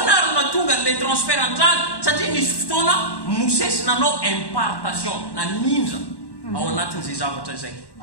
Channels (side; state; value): right; late; 1.1 ms